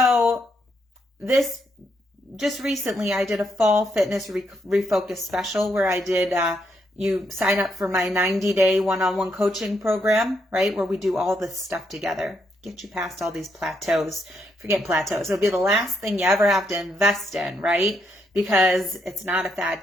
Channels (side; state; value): both; normal; correlation 0.77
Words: this just recently I did a fall fitness refocus special where I did you sign up for my 90-day one-on-one coaching program, right? Where we do all this stuff together. Get you past all these plateaus. Forget plateaus. It'll be the last thing you ever have to invest in, right? Because it's not a fad